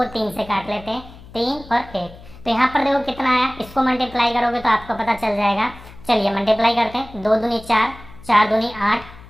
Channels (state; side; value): noise; left; hum, 19 dB below the sound